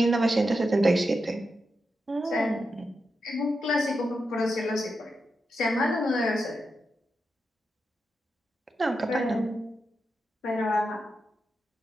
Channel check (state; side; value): normal; both; correlation 0.87